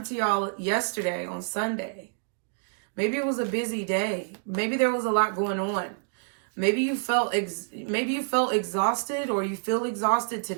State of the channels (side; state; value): left; silent; digital silence